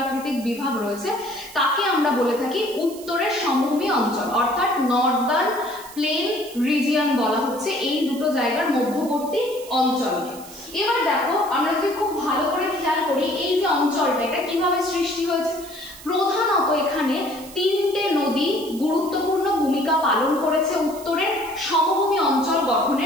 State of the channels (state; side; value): noise; right; hiss, 17 dB below the sound